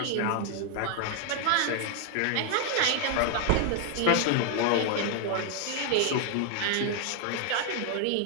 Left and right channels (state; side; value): different; both; correlation 0.00